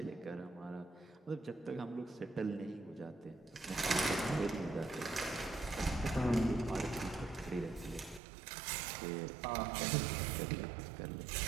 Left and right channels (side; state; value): left; drops out; at 8.2 s